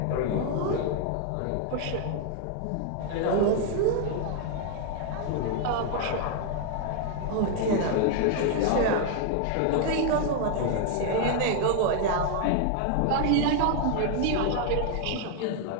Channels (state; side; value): different; both; correlation 0.00